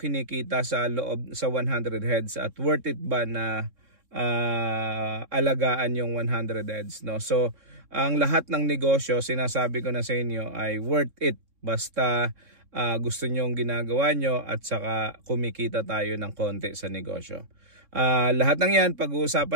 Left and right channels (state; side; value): late; left; 3.6 ms